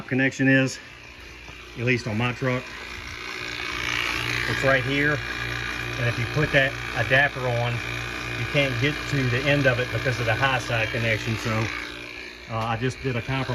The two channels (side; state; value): both; identical; correlation 1.00